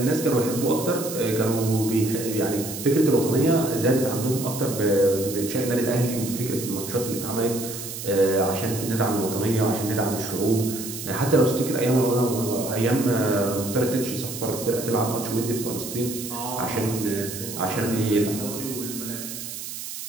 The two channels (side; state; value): right; noise; hiss, 8 dB below the sound